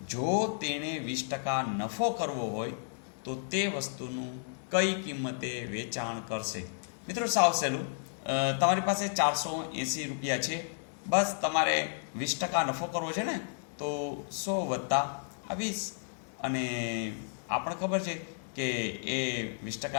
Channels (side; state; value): right; silent; 56 dB below the other